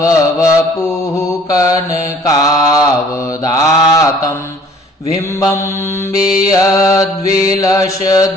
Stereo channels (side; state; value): both; normal; correlation 0.54